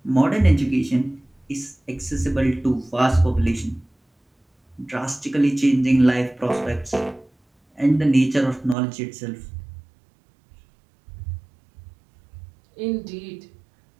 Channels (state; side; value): drops out; left; at 8.8 s